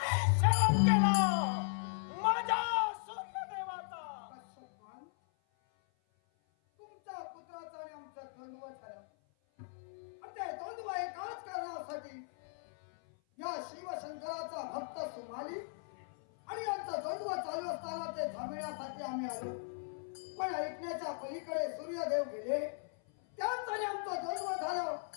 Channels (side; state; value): right; silent; 53 dB below the other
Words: शरण केला माझ्या सूर्यदेवाचा. तुमच्या पुत्राचा आणि आमचा द्वंद्व झाला. ते द्वंद्व एकाच कारणासाठी या शिवशंकराचा भक्त सुमाली आणि यांचा द्वंद्व चालू असताना ते थांबविण्यासाठी आम्ही आलो. पण ऐकण्याच्या पलीकडे सूर्यदेव गेले. त्याच आणि आमचं द्वंद्व झालं.